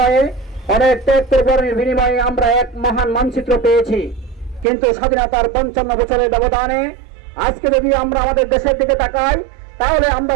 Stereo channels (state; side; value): drops out; left; at 4.7 s